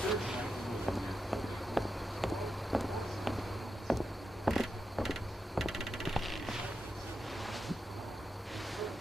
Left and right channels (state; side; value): normal; both; correlation 0.87